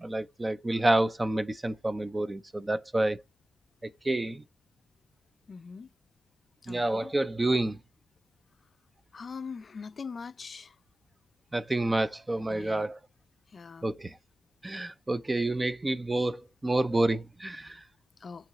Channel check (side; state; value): both; normal; correlation 0.97